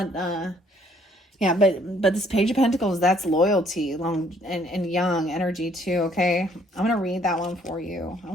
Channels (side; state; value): both; normal; correlation 0.64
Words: but this Page of Pentacles, that's loyalty, long and young energy too, okay? I'm going to read that one for you. I